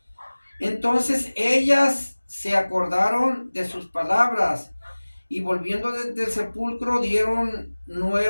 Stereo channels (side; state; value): both; inverted; correlation -1.00